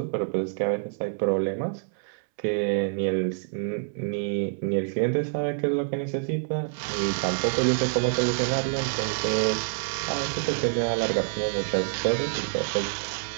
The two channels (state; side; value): silent; left; 60 dB below the other